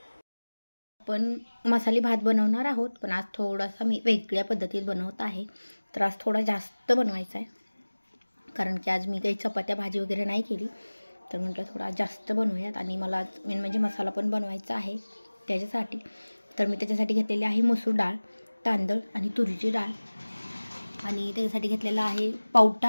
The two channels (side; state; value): both; inverted; correlation -1.00